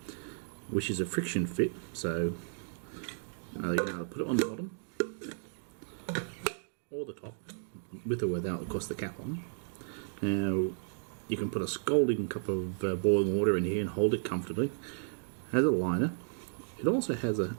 which is a friction fit, so you're going to put it on the bottom or the top, with or without, of course, the cap on. Now, you can put a scalding cup of boiling water in here and hold it comfortably. It has a liner. It also has a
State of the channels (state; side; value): silent; left; digital silence